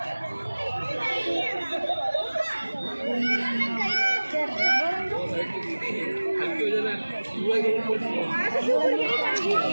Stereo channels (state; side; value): inverted; both; correlation -1.00